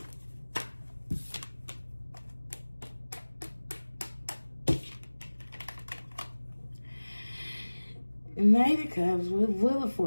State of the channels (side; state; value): both; inverted; correlation -1.00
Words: Knight of Cups with Wheel of